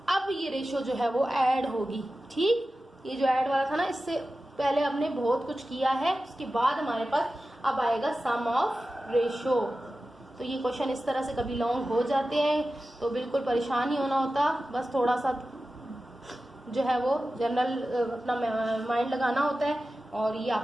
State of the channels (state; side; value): normal; both; correlation 0.94